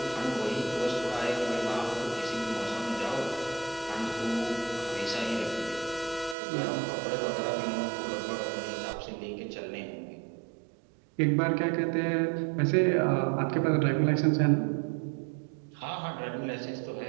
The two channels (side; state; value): left; drops out; at 6.4 s